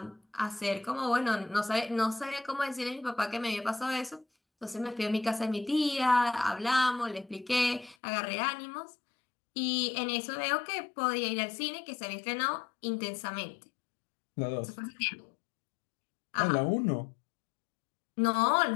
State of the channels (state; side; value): drops out; right; at 8.0 s